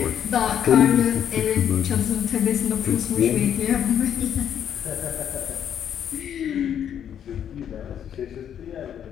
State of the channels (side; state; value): right; quieter; 9.2 dB